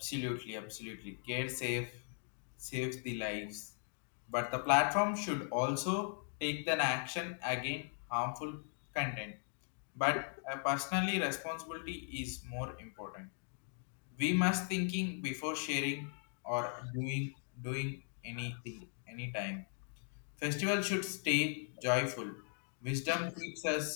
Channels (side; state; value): right; silent; 52 dB below the other